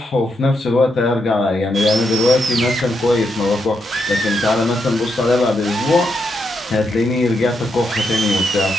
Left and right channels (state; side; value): normal; both; correlation 0.81